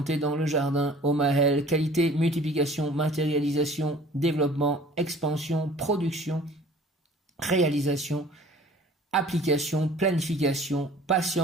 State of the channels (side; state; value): both; normal; correlation 0.49